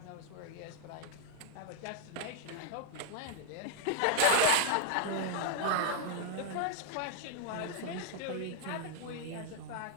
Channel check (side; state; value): both; different; correlation -0.01